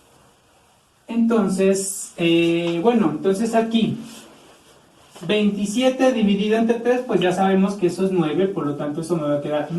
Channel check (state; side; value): identical; both; correlation 1.00